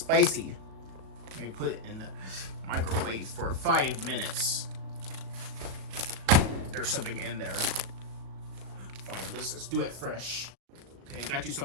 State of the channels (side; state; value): left; late; 37 ms